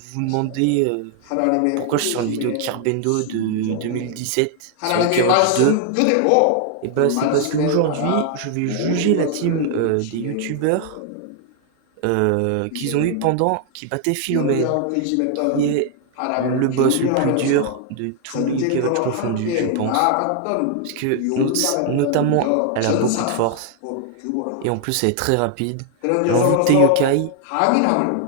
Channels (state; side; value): different; both; correlation 0.00